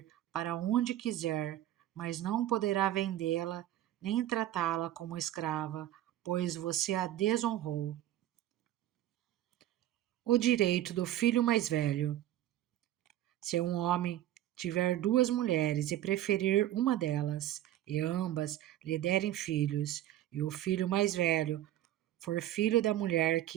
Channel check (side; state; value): left; quieter; 13.2 dB